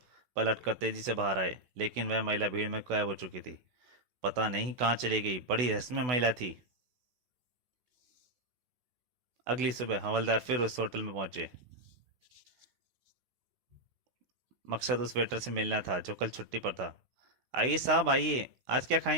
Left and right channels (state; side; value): late; left; 16 ms